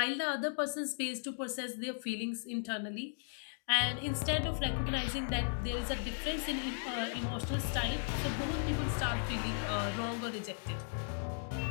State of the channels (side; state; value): right; silent; digital silence